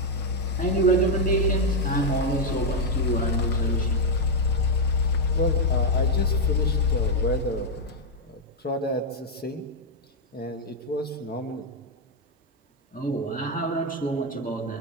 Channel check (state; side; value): normal; both; correlation 0.01